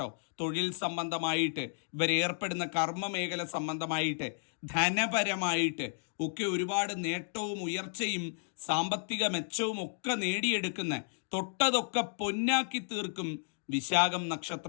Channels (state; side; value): silent; right; digital silence